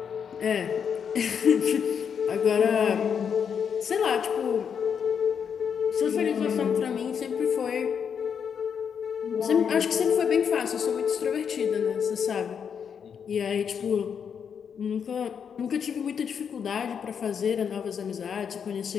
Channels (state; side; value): quieter; right; 7.2 dB